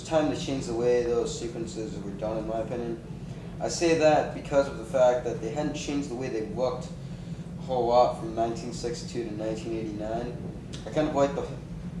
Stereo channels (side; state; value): both; identical; correlation 1.00